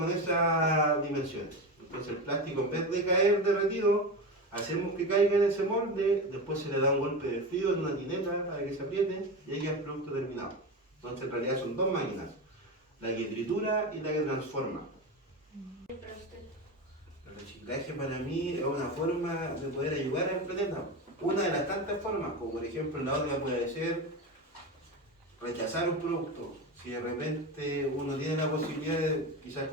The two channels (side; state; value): both; normal; correlation 0.22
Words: esas dimensiones. Entonces el plástico, en vez de caer derretido, hacemos que caiga en ese molde, después se le da un golpe de frío en una tineta para que se apriete y ahí queda el producto terminado. Entonces en realidad son dos máquinas, la que tritura y la que transforma. El reciclaje para mí es una forma de poder ayudar al planeta. Una de las tantas formas, como por ejemplo la otra puede ser rechazar un producto. Si de repente uno tiene la posibilidad de quizás